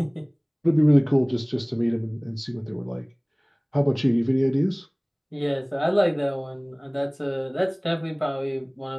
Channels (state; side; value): identical; both; correlation 1.00